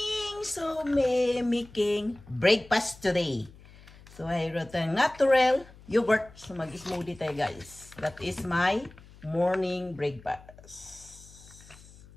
So, may making breakfast today. So, I wrote a natural yogurt. So, mag-smoothie tayo guys. That is my morning breakfast.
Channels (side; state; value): left; noise; hum, 22 dB below the sound